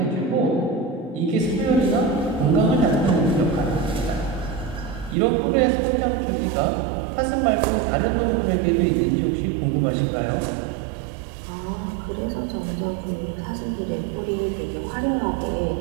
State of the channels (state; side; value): drops out; left; at 5.2 s